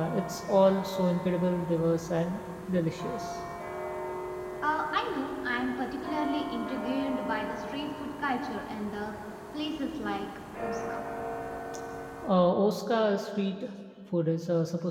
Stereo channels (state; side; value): identical; both; correlation 1.00